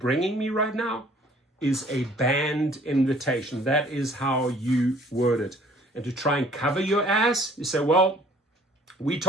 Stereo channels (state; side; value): normal; both; correlation 0.54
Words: me right now is a banned invitation. That is how you word it. And to try and cover your ass, you say, well, we